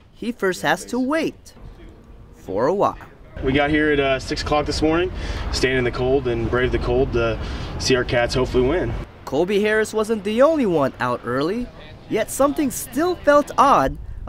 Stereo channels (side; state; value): both; identical; correlation 1.00